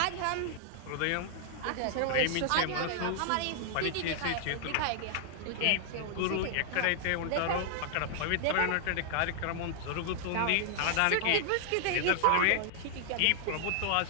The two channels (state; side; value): different; both; correlation 0.00